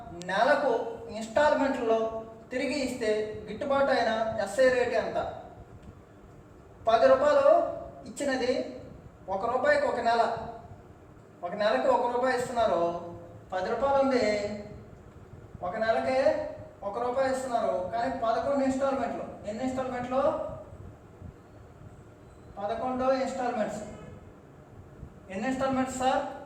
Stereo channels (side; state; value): both; identical; correlation 1.00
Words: నెలకు ఇన్స్టాల్మెంట్లో తిరిగి ఇస్తే గిట్టుబాటు అయిన ఎస్ఐ రేట్ ఎంత? ₹10 ఇచ్చినది ₹1 ఒక నెల, ఒక నెలకి ₹1 ఇస్తున్నారు. ₹10 ఉంది, ఒక నెలకే ₹1 ఇస్తున్నారు. కానీ 11 ఇన్స్టాల్మెంట్లు. ఎన్ని ఇన్స్టాల్మెంట్లు? 11 ఇన్స్టాల్మెంట్స్. ఎన్ని ఇన్స్టాల్మెంట్స్ సార్?